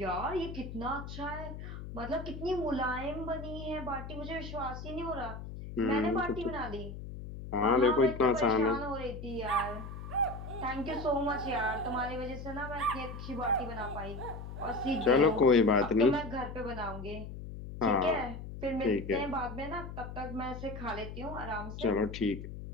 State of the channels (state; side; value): noise; left; hum, 9 dB below the sound